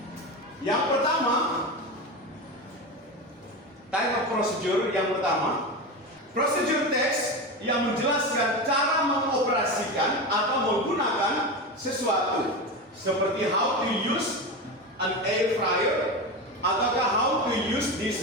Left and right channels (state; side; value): normal; both; correlation 0.21